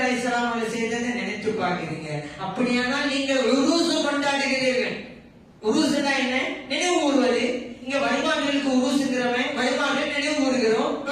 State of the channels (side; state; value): both; identical; correlation 1.00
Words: அலைஹிஸ்ஸலாம் அவர்கள் செய்ததை நினைத்து பார்க்கிறீங்க. அப்படியானால் நீங்கள் உருசு கொண்டாடுகிறீர்கள். உருசுனா என்ன? நினைவு கூறுவது. இங்க வழிபாடுகளுக்கு உருசுங்கிறவன் வழிபாடுகள் நினைவு கூறுகிறோம்.